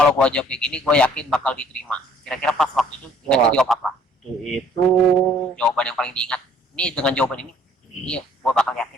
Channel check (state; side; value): normal; both; correlation 0.59